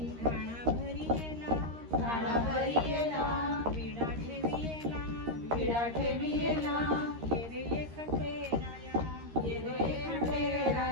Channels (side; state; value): left; late; 13 ms